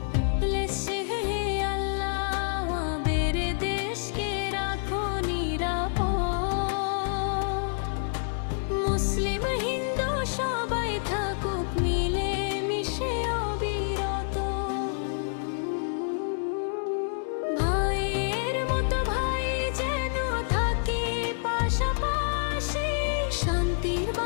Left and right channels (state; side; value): silent; right; digital silence